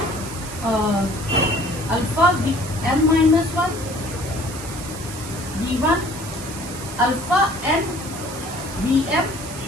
alpha Vm minus 1, V1, alpha n Vm,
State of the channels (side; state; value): right; noise; hiss, 12 dB below the sound